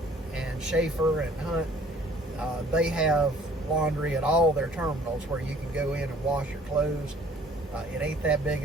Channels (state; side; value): normal; both; correlation 0.54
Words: and Schaefer and Hunt, they have laundry at all their terminals where you can go in and wash your clothes. It ain't that big